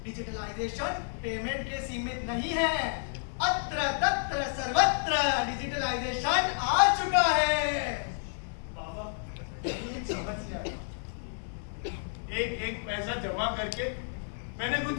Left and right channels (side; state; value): right; silent; digital silence